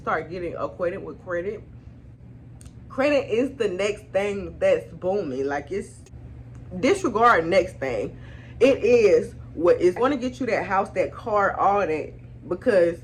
getting acquainted with credit. Credit is the next thing that's booming. Like, it's disregard next thing. It is what is going to get you that house, that car, all that, because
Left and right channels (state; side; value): identical; both; correlation 1.00